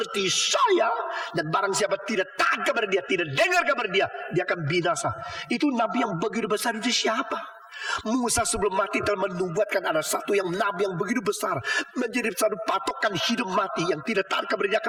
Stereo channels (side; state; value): both; identical; correlation 1.00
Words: saya. Dan barang siapa tidak taat kepada dia, tidak dengar kepada dia, dia akan binasa. Itu nabi yang begitu besar itu siapa? Musa sebelum mati telah menubuatkan ada satu yang nabi yang begitu besar, menjadi satu patokan hidup mati yang tidak taat kepada dia